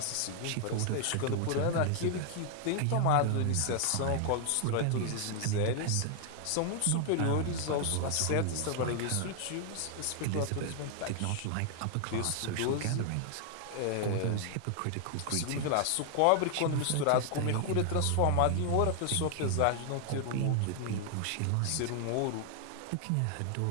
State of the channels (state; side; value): different; both; correlation 0.00